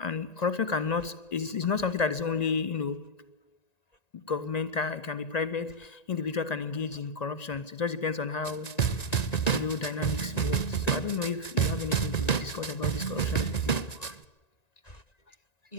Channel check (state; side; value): late; right; 1.9 ms